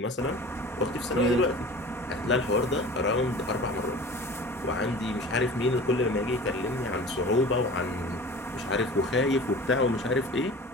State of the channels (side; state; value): both; normal; correlation 0.40